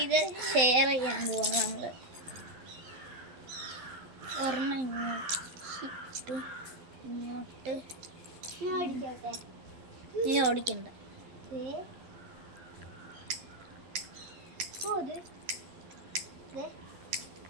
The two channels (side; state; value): left; late; 12 ms